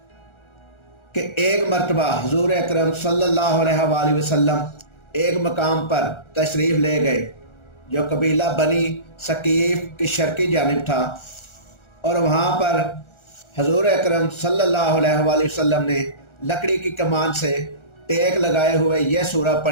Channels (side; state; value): right; late; 1.4 ms